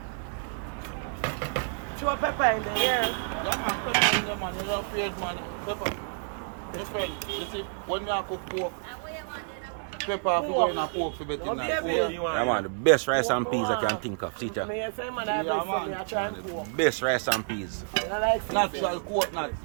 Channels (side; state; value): left; silent; 59 dB below the other